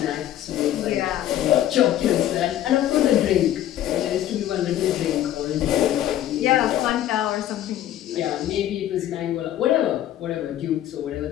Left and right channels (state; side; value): quieter; right; 12.3 dB